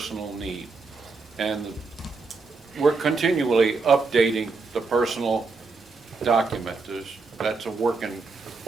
need. And we're continually updating the personal document. That's a work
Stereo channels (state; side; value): quieter; left; 4.2 dB